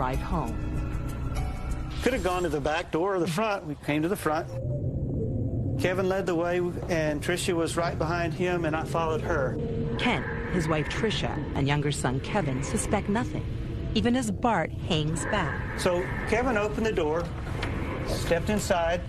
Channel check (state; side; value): identical; both; correlation 1.00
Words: home. Could have gone to the back door or the front. We came to the front. Kevin led the way, and Tricia was right behind him, and I followed her. Kent, his wife Tricia, and younger son Kevin suspect nothing, even as Bart hangs back. So Kevin opened the door, stepped inside,